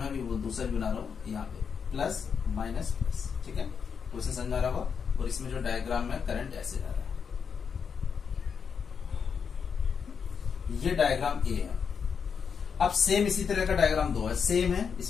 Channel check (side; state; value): right; quieter; 6.4 dB